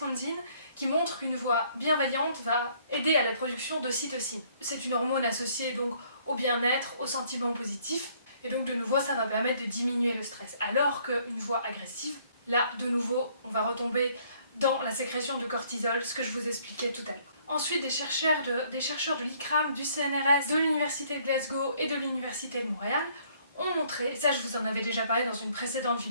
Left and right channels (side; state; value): both; inverted; correlation -0.63